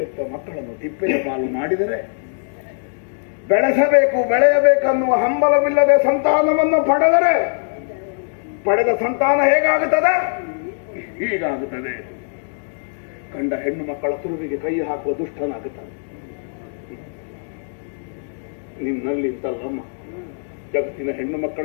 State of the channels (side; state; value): right; silent; digital silence